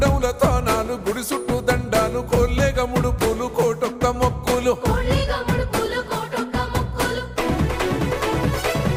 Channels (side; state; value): both; identical; correlation 1.00